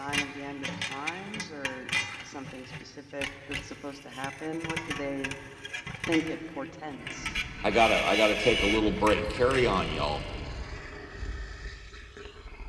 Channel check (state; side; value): identical; both; correlation 1.00